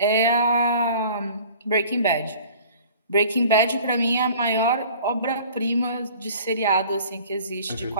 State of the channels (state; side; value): inverted; both; correlation -0.47